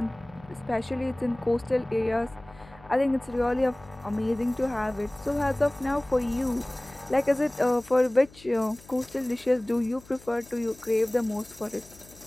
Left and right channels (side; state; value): left; noise; hum, 23 dB below the sound